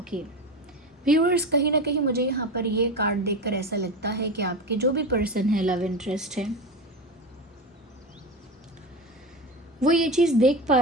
Viewers, कहीं ना कहीं मुझे यहाँ पर ये कार्ड देखकर ऐसा लगता है कि आपके जो भी पर्सन है, लव इंटरेस्ट है, वो ये चीज़ देख पा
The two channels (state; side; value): normal; both; correlation 0.23